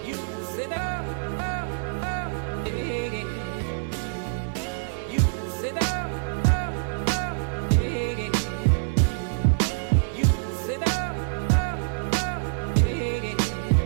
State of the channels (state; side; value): silent; left; digital silence